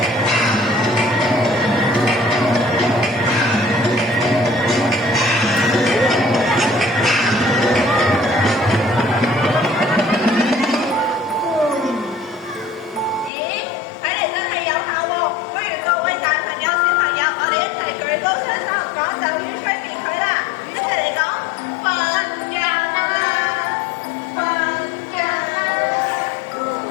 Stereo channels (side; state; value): right; drops out; at 13.3 s